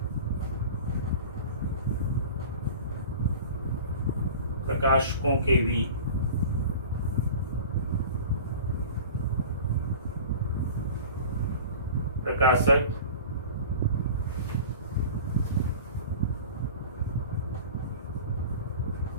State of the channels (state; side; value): inverted; both; correlation -0.38